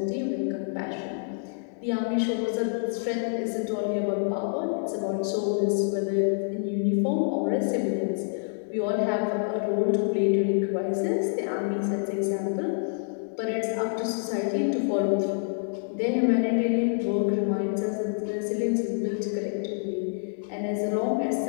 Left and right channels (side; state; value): right; silent; digital silence